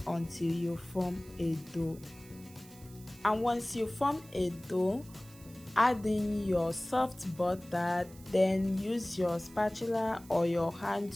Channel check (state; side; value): noise; right; hiss, 22 dB below the sound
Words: until you form a dough. And once you form a dough, add in your soft butter. Then use your spatula or your hand